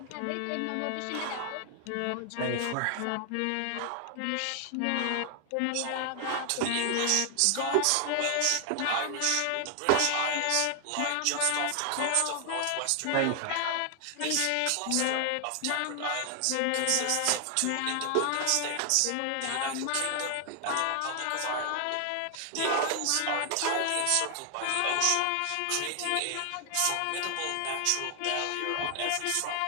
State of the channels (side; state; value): both; different; correlation 0.00